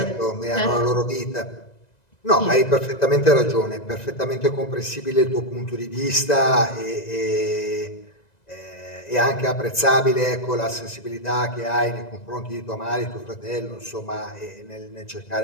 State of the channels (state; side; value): late; right; 1.9 ms